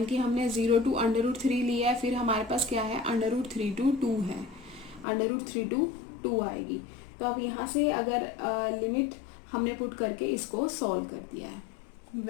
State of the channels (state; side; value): drops out; right; at 5.1 s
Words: की हमने 0 to √3 लिया है, फिर हमारे पास क्या है √3 to 2 है, √3 to 2 आएगी। तो अब यहाँ से अगर लिमिट हमने पुट करके इसको सॉल्व कर दिया है।